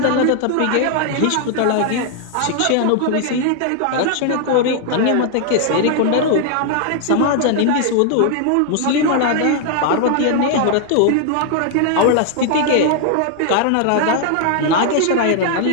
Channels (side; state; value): both; different; correlation 0.00